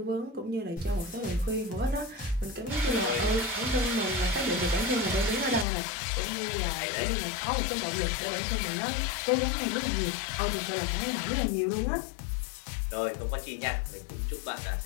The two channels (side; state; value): right; drops out; at 5.7 s